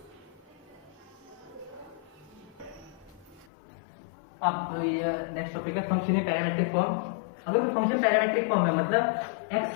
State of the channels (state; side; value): drops out; right; at 3.5 s